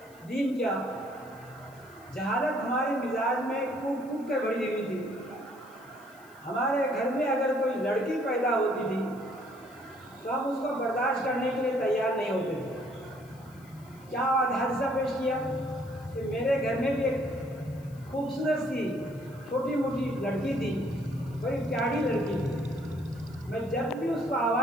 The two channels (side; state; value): left; noise; hiss, 27 dB below the sound